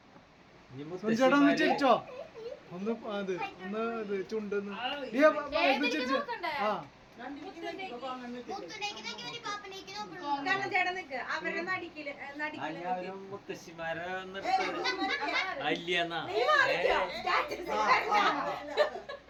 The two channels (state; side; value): identical; both; correlation 1.00